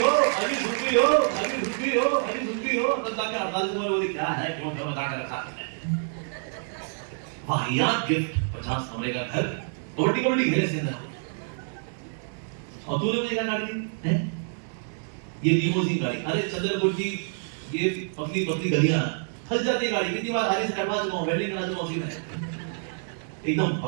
हो, अभी घुटकी हो, अभी घुटकी हो, अभी घुटकी हो, तब तक 48 कमरे बोली क्या है, क्यों क्यों बता कर रखा है? वाहियात गिफ्ट, 50 कमरे का घर, कबड्डी कबड्डी खेले इसके अंदर। और तूने मुझे क्या गाड़ी दी है? ये लिमोजिन गाड़ी। अरे चंद्रपुर की ये पतली पतली गलियां फंस जाती है गाड़ी, कितनी बार आगे से करवा चुका हूं, वेल्डिंग करा चुका हूं उसी में। एकदम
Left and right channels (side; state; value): left; silent; digital silence